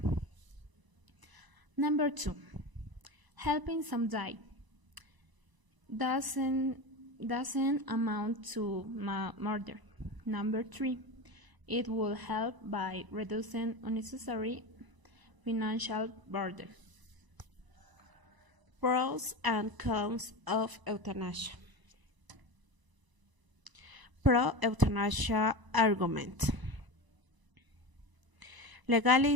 Number 2. Helping some die doesn't amount to murder. Number 3. It will help by reducing unnecessary financial burden. Pros and cons of euthanasia. Pro-euthanasia argument.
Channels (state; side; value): late; left; 1.0 ms